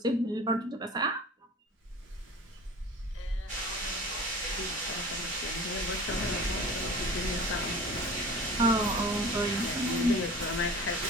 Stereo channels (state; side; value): normal; both; correlation 0.40